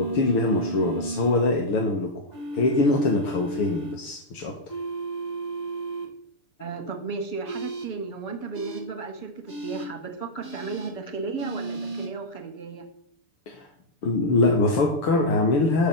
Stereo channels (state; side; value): late; right; 6.8 ms